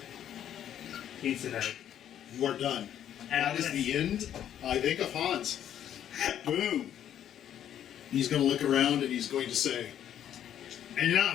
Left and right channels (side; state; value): right; quieter; 10.3 dB